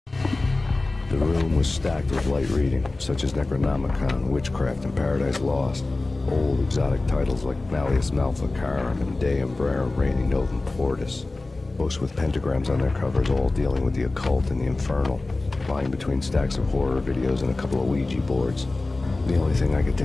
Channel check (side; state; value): right; quieter; 3.2 dB